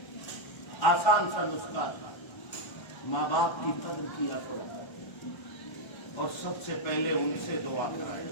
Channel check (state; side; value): late; right; 1.3 ms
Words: آسان سا نسخہ، ماں باپ کی قدر کیا کرو اور سب سے پہلے ان سے دعا کرائے۔